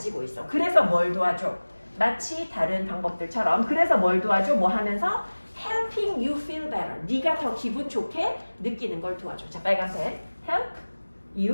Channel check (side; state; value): both; inverted; correlation -1.00